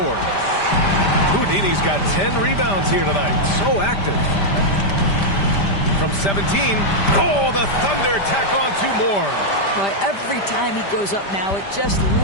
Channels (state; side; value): late; right; 5.1 ms